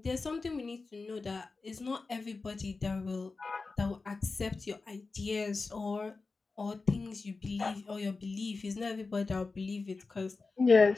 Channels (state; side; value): quieter; right; 4.0 dB